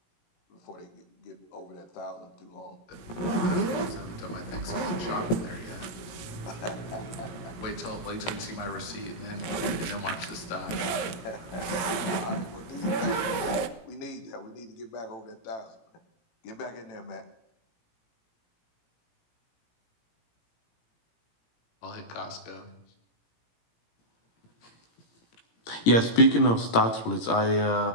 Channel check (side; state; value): right; late; 17 ms